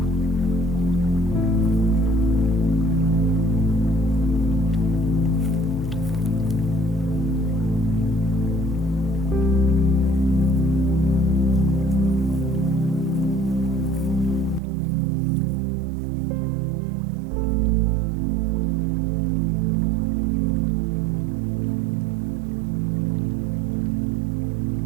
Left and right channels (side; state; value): left; drops out; at 14.6 s